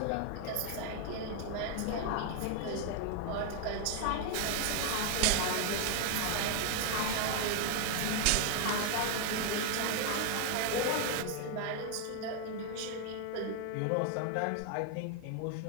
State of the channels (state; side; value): different; both; correlation 0.00